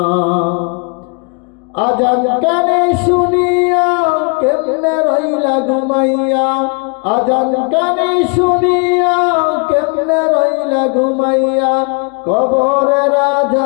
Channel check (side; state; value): right; quieter; 35.6 dB